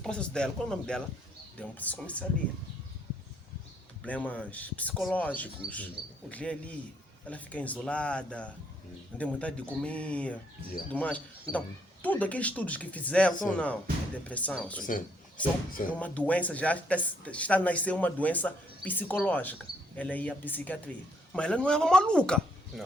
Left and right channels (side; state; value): both; normal; correlation 0.70